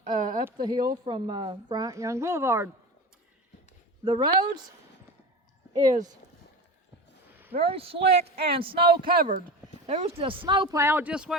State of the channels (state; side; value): normal; both; correlation 0.30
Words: the hill from Bryant Young Boulevard. The roads is very slick and snow covered. There was the snow plow just